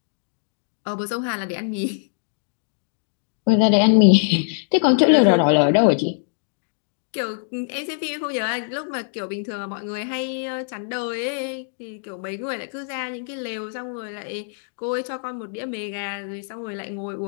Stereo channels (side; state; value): right; silent; 63 dB below the other